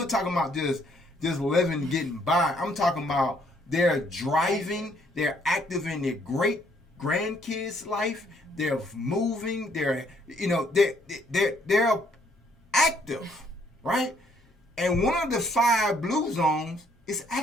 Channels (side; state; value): both; normal; correlation 0.66